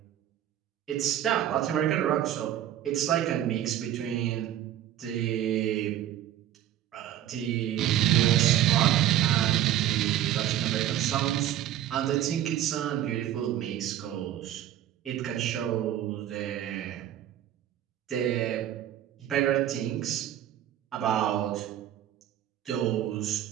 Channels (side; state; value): left; quieter; 12.1 dB